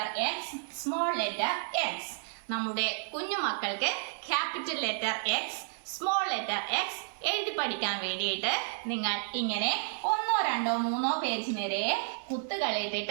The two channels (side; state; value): left; silent; digital silence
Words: X, small letter X. നമ്മുടെ കുഞ്ഞു മക്കൾക്ക് capital letter X, small letter X എഴുതി പഠിക്കാൻ വേണ്ടിയിട്ട് നിങ്ങൾ ഇങ്ങനെ 1, 2, 3 പേജ് നിറയെ